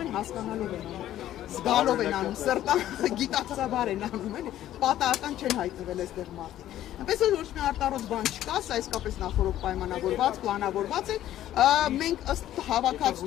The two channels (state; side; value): quieter; right; 12.7 dB